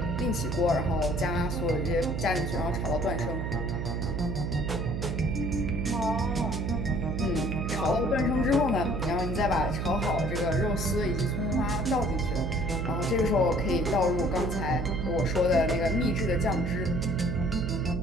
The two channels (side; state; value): right; noise; hum, 2 dB below the sound